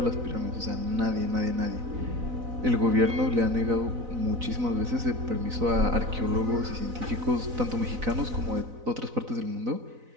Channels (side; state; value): left; late; 4.0 ms